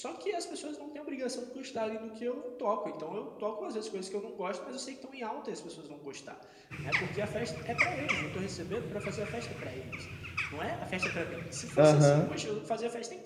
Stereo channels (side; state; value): both; identical; correlation 1.00